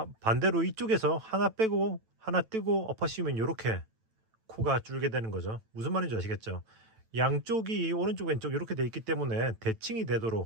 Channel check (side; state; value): left; late; 9.0 ms